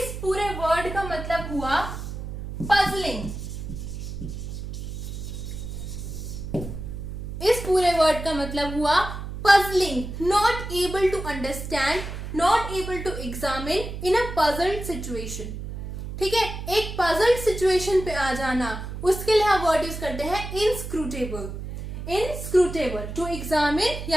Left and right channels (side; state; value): right; noise; hum, 7 dB below the sound